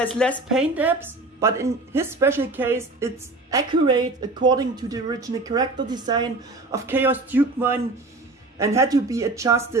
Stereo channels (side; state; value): left; quieter; 3.1 dB